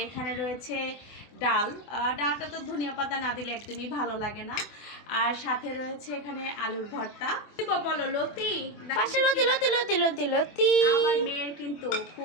এখানে রয়েছে ডাল, ডালটা তো ধনিয়া পাতা না দিলে একদমই ভালো লাগে না। আর সাথে রয়েছে এখানে আলুর ভর্তা। বলো লতি, পাশে লতি লতি লতি লতি লতি। আমার মেয়ের কিন্তু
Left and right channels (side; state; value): right; late; 24 ms